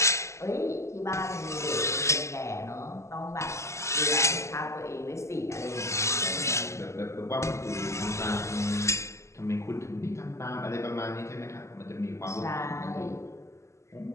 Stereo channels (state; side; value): late; right; 0.14 ms